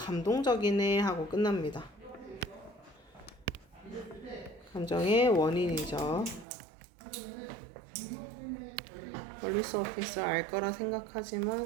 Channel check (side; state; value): left; drops out; at 6.5 s